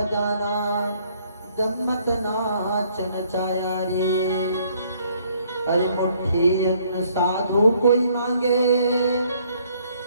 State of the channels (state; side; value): inverted; both; correlation -0.65